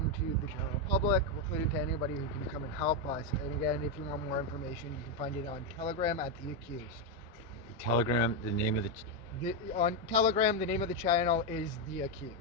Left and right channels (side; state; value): both; normal; correlation 0.05